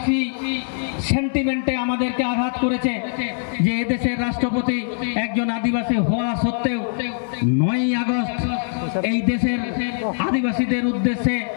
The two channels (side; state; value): right; silent; 64 dB below the other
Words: সেন্টিমেন্টে আমাদেরকে আঘাত করেছে যে এদেশের রাষ্ট্রপতি একজন আদিবাসী হওয়া সত্ত্বেও 9ই আগস্ট এই দেশের আদিবাসীদের উদ্দেশ্যে